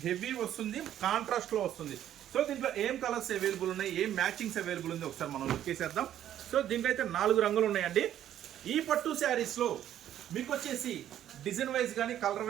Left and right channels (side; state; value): left; quieter; 11.3 dB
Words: హెవీ వస్తుంది, కాంట్రాస్ట్లో వస్తుంది. సో దీంట్లో ఏం కలర్స్ అవైలబుల్ ఉన్నాయి, ఏం మ్యాచింగ్స్ అవైలబుల్ ఉంది ఒకసారి మనం లుక్ చేసేద్దాం. సో దీంట్లో అయితే 4 రంగులు ఉన్నాయండి. ఈ పట్టు శారీస్లో మీకు వచ్చేసి డిజైన్ వైజ్ కానీ కలర్